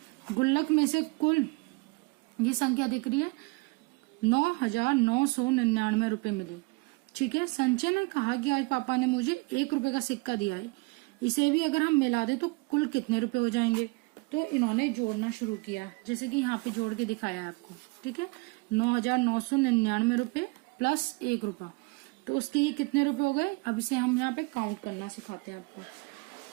गुल्लक में से कुल ये संख्या दिख रही है 9,999 रुपए मिले। ठीक है, संजय ने कहा कि आज पापा ने मुझे 1 रुपए का सिक्का दिया है, इसे भी अगर हम मिला दें तो कुल कितने रुपए हो जाएंगे? तो इन्होंने जोड़ना शुरू किया, जैसे कि यहाँ पे जोड़ के दिखाया है आपको। ठीक है, 9,999 रुपए प्लस 1 रुपया, तो उसके ये कितने रुपए हो गए? अब इसे हम यहाँ पे काउंट करना सिखाते हैं आपको।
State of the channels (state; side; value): quieter; left; 28.2 dB